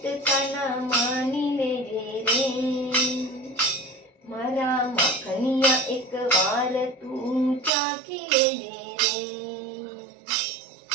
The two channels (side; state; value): left; drops out; at 7.7 s